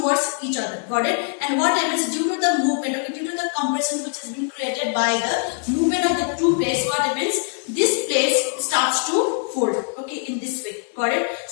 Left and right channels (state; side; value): silent; right; 55 dB below the other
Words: each other. Got it? And what happens due to the movement? Okay, due to the compression which has been created by the movement of the two plates, what happens? This plate starts to fold. Okay, in this way. Got it?